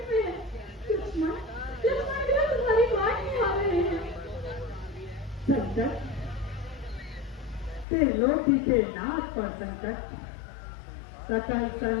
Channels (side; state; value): right; drops out; at 7.9 s